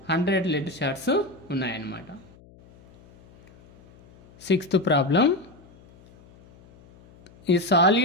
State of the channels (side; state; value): left; noise; hum, 26 dB below the sound